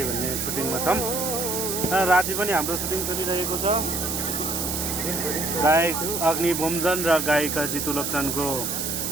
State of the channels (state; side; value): noise; right; hiss, 2 dB below the sound